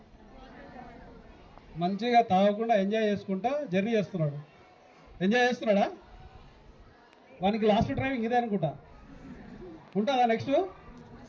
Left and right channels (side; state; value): both; identical; correlation 1.00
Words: మంచిగా తాగకుండా ఎంజాయ్ చేసుకుంటా జర్నీ చేస్తున్నాడు. ఎంజాయ్ చేస్తున్నాడా? వానికి లాస్ట్ డ్రైవింగ్ ఇదే అనుకుంటా. ఉంటుందా నెక్స్ట్?